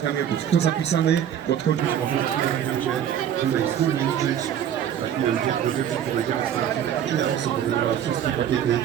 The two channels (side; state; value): left; quieter; 9.6 dB